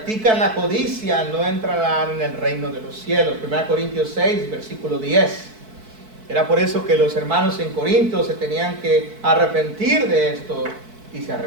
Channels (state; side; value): late; left; 4.6 ms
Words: la codicia no entrarán en el reino de los cielos. 1 Corintios 6, versículo 10. Era por eso que los hermanos en Corinto se tenían que arrepentir de esto y se